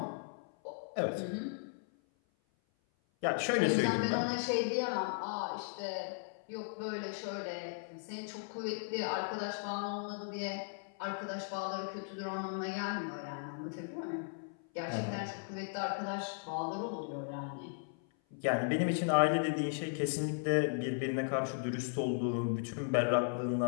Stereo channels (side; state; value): right; silent; 53 dB below the other